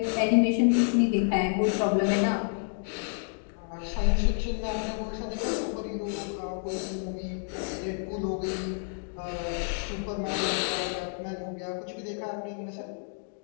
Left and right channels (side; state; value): right; silent; 57 dB below the other